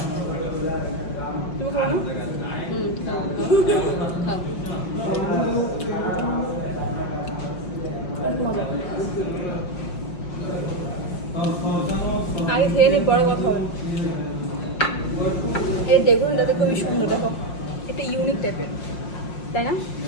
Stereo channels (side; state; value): right; late; 5.6 ms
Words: তুমি খাও না অনেক মজা আগে খেয়ে নিই পরে কথা হবে এর ডেকোরেশনটা খুবই সুন্দর দেখো একটা ইউনিক টাইপের তাই না